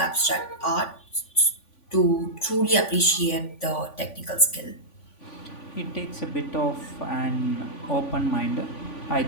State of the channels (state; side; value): late; right; 3.5 ms